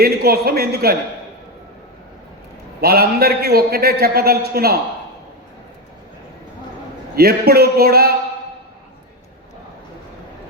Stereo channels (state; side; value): normal; both; correlation 0.12